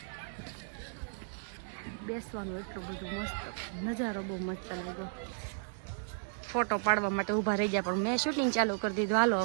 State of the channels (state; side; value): silent; left; digital silence